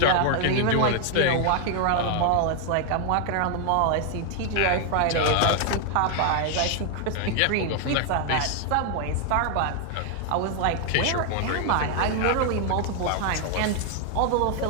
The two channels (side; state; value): both; different; correlation 0.00